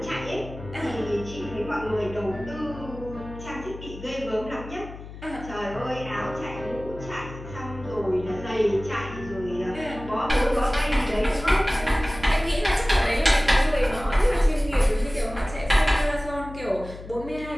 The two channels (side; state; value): left; noise; hum, 13 dB below the sound